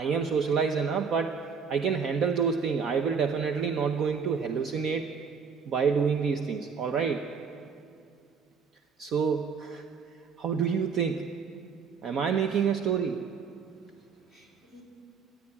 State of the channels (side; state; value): left; quieter; 5.9 dB